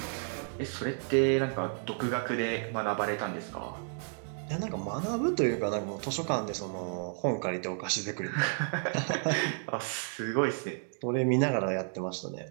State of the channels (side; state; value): left; silent; 57 dB below the other